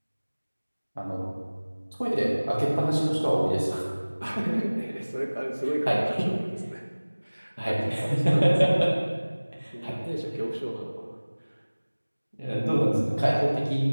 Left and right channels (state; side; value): inverted; both; correlation -1.00